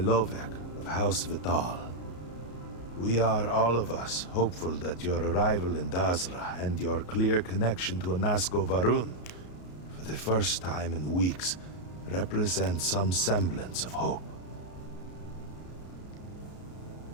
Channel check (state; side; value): late; right; 33 ms